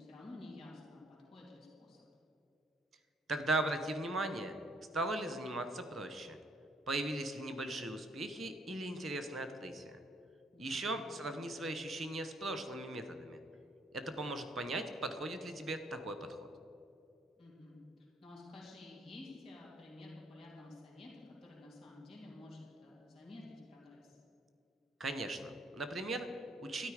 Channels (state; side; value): normal; both; correlation 0.65